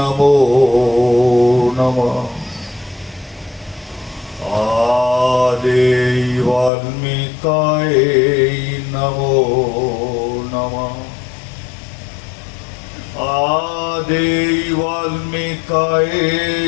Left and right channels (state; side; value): drops out; right; at 6.7 s